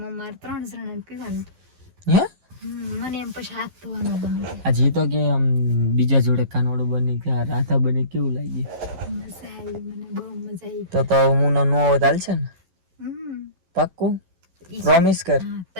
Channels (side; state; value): left; late; 12 ms